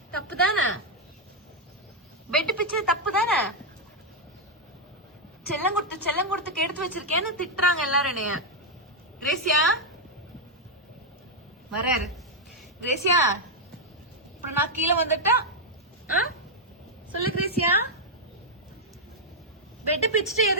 தப்பு தானே? பெட் பிச்சது தப்பு தானே? செல்லம் கொடுத்து எடுத்து வச்சிருக்கேன்னு திட்டுறாங்க எல்லாரும் என்னைய. கிரேசியா வராரு. கிரேசியா அப்புறம் நான் கீழே வந்துட்டா சொல்லு கிரேசியா. பெட் பிச்சுட்டு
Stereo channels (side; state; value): both; normal; correlation -0.01